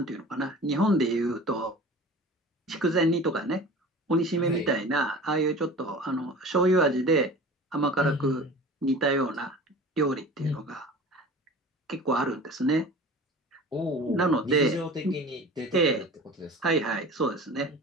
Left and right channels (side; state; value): both; normal; correlation 0.39